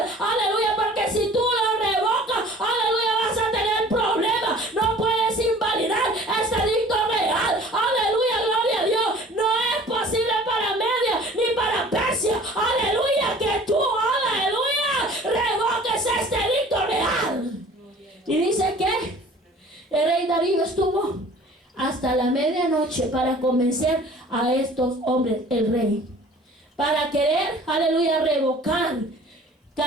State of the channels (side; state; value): both; normal; correlation 0.48